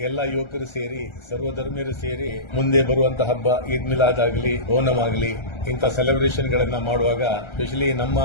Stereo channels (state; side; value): late; right; 1.3 ms